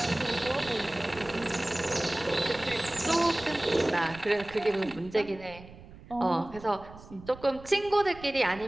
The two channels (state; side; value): noise; right; rumble, 18 dB below the sound